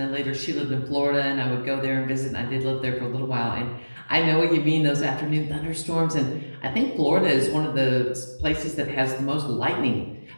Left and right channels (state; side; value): inverted; both; correlation -1.00